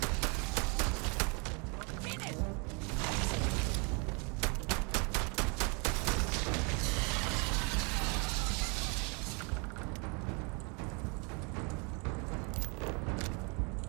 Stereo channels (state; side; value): quieter; left; 33.2 dB